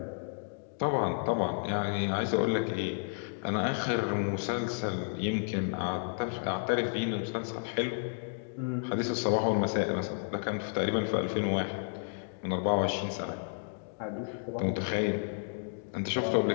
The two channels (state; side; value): silent; right; digital silence